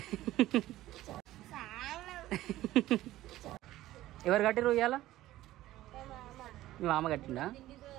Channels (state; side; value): quieter; left; 15.4 dB